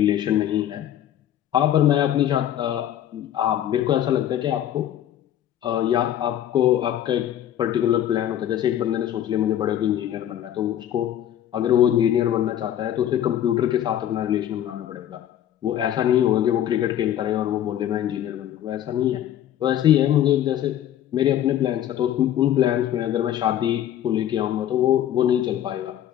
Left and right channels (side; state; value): right; quieter; 11.2 dB